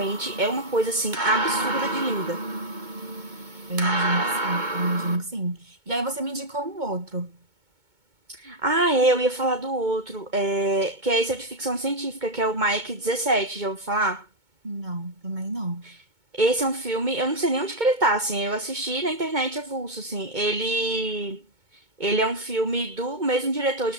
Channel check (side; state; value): left; late; 2.2 ms